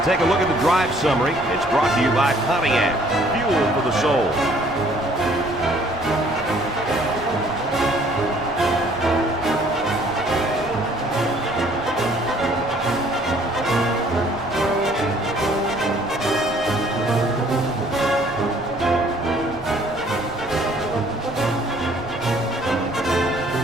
take a look at the drive summary. It's brought to you by Pontiac. Fuel for the soul.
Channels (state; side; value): normal; both; correlation 0.59